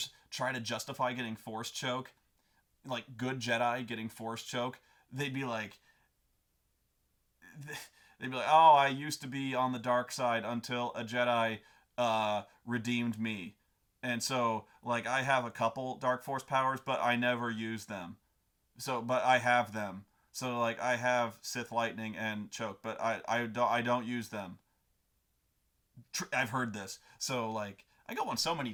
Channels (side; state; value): both; identical; correlation 1.00